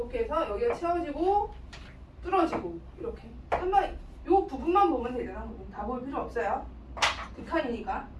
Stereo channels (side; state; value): both; identical; correlation 1.00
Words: 해서 여기가 채워지고 뚫어지고 이렇게. 한번 요 부분만 보면 되잖아. 다 볼 필요 없어요. 극한이니까.